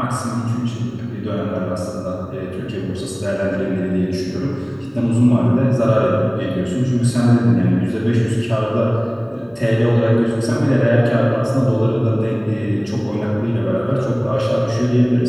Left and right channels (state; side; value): identical; both; correlation 1.00